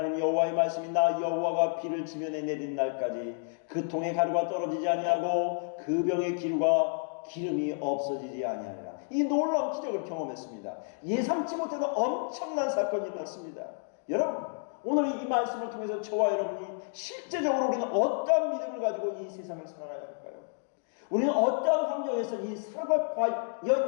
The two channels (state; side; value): silent; right; 58 dB below the other